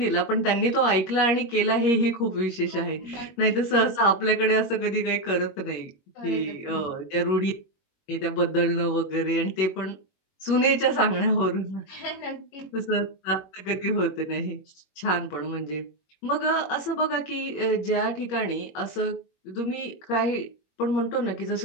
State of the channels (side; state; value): right; late; 21 ms